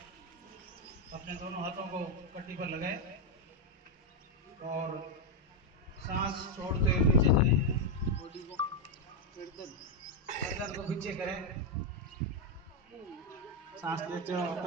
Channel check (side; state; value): both; normal; correlation 0.03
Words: अपने दोनों हाथों को कट्टी पर लगाए और सांस छोड़ते हुए पीछे जाएं, बॉडी को गर्दन को पीछे करें, सांस लेते हुए